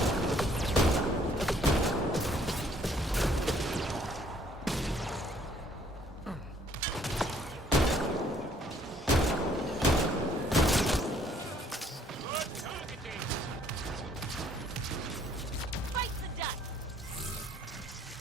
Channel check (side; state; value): both; normal; correlation 0.63